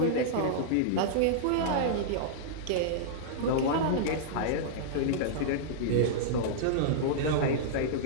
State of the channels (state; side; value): different; both; correlation -0.02